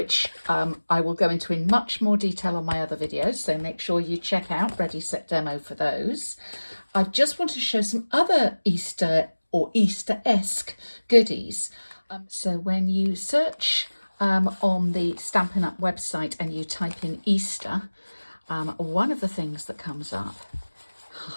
I will go into in much more detail on my other videos, so make sure you check out Ready Set Demo for those. I just want to show some other Easter or Easter-esque goodies. So when you search on the Stampin' Up website and you type in Easter, one of the things that comes up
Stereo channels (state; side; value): inverted; both; correlation -1.00